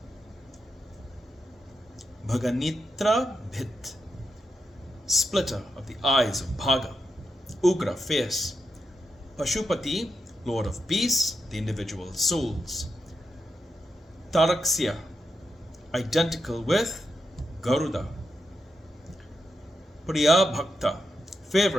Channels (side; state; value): both; normal; correlation 0.85